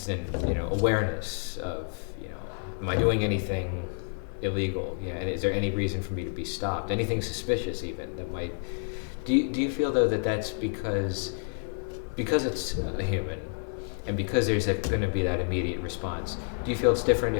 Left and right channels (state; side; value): silent; right; 58 dB below the other